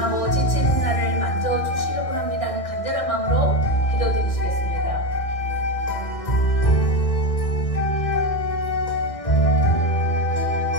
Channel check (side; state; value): right; late; 1.6 ms